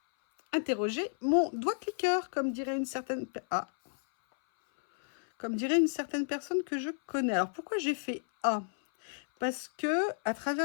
interroger mon doigt cliqueur, comme dirait une certaine personne que je connais. Alors pourquoi j'ai fait A? Parce que à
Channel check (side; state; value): right; silent; 57 dB below the other